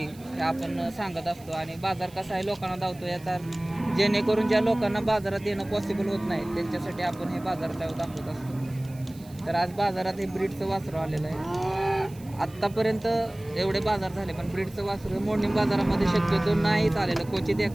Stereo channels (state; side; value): noise; right; hiss, 24 dB below the sound